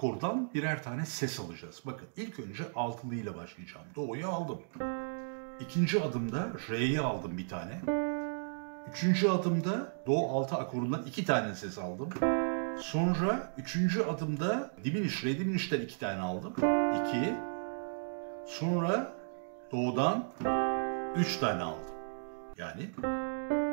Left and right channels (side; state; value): left; silent; digital silence